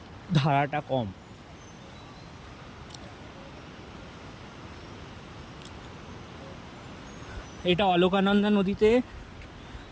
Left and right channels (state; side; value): identical; both; correlation 1.00